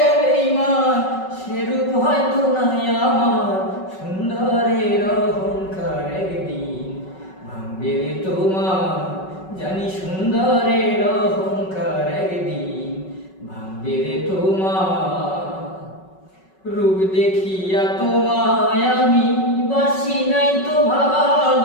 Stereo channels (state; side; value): late; right; 5.3 ms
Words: বেঈমান, সে রূপ হয়তো নাই আমার সুন্দরের অহংকার একদিন ভাঙবে রে তোমার, জানি সুন্দরের অহংকার একদিন ভাঙবে রে তোমার। রূপ দেখিয়া তোমায় আমি বাসি নাই তো